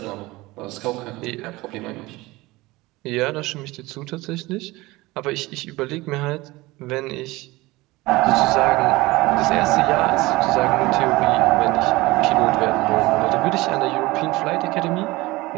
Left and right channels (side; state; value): left; quieter; 20.7 dB